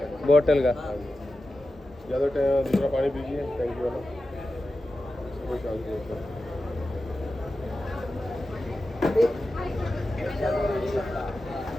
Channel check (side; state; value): both; normal; correlation 0.92